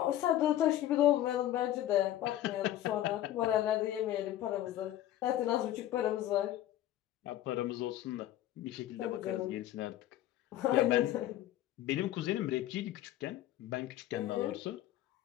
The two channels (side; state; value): right; quieter; 13.1 dB